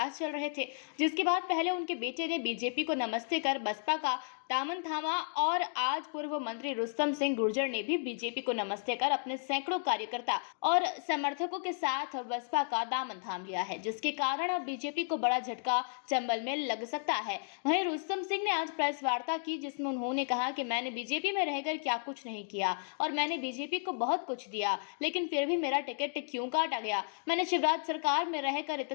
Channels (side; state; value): right; silent; digital silence